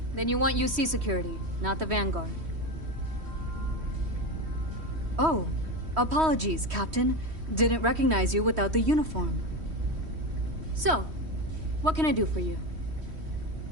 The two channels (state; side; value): late; left; 3.1 ms